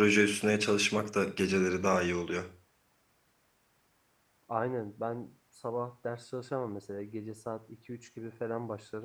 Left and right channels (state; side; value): identical; both; correlation 1.00